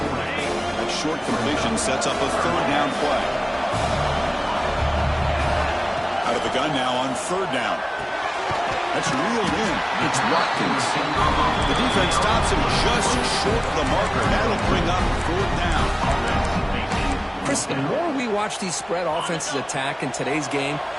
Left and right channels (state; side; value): identical; both; correlation 1.00